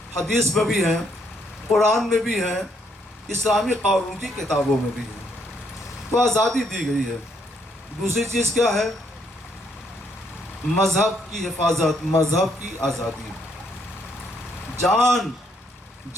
حدیث میں بھی ہیں، قرآن میں بھی ہیں، اسلامی قانون کی کتابوں میں بھی ہیں۔ تو آزادی دی گئی ہے۔ دوسری چیز کیا ہے؟ مذہب کی حفاظت، مذہب کی آزادی،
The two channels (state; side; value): normal; both; correlation 0.72